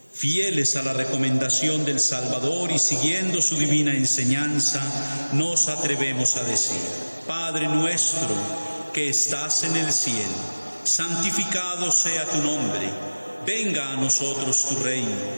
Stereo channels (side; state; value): both; inverted; correlation -1.00